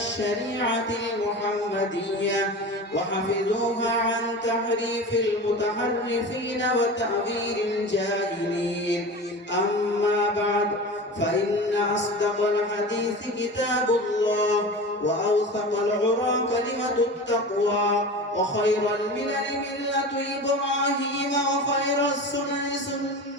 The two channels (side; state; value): both; normal; correlation 0.32